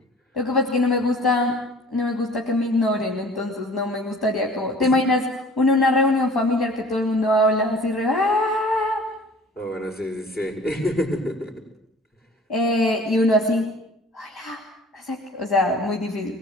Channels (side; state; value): both; normal; correlation 0.48